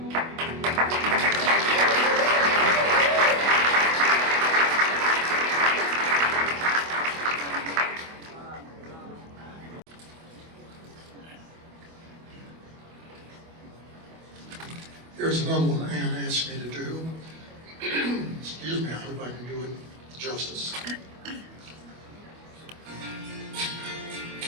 Here's another one Ann asked me to do. Excuse me, I hope I can do it justice.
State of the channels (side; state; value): left; late; 25 ms